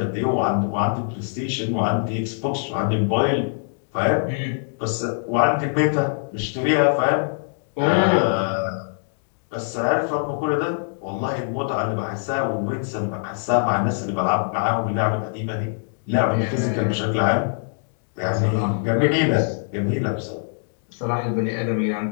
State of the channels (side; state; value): right; silent; digital silence